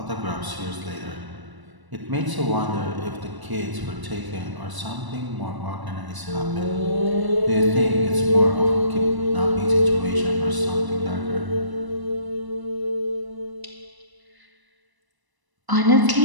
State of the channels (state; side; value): late; left; 1.0 ms